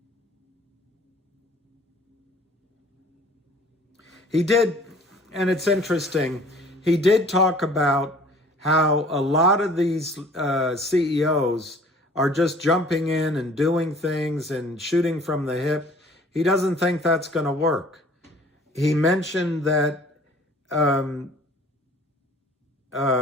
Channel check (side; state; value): both; normal; correlation 0.51